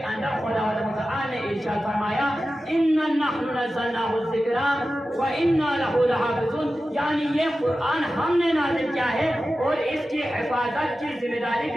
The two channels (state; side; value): normal; both; correlation 0.94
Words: اندر خداوند متعال نے ارشاد فرمایا: اِنَّا نَحْنُ نَزَّلْنَاهُ الذِّكْرَ وَإِنَّا لَهُ لَحَافِظُونَ، یعنی یہ قرآن ہم نے نازل کیا ہے اور اس کی حفاظت کی ذمہ داری